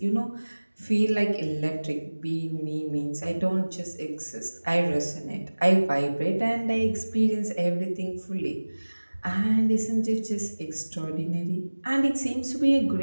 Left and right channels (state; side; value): inverted; both; correlation -1.00